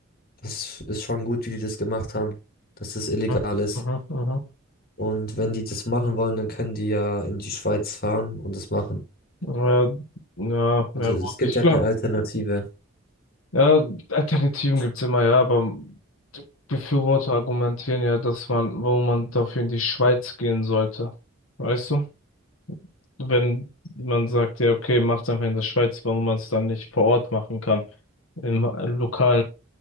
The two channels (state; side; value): normal; both; correlation 0.22